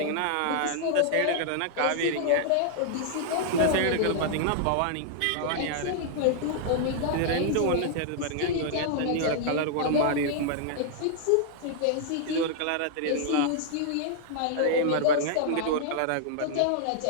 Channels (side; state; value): both; different; correlation -0.01